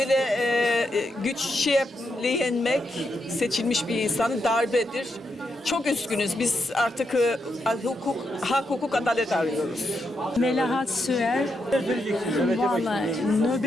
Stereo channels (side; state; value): both; normal; correlation 0.82